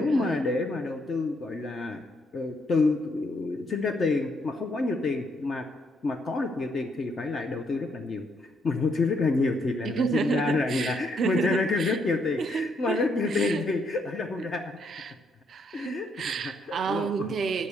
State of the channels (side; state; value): both; normal; correlation 0.74